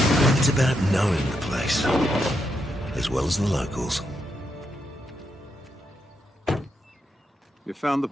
It's about knowing the place, as well as the locals. You found the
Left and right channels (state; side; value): normal; both; correlation 0.82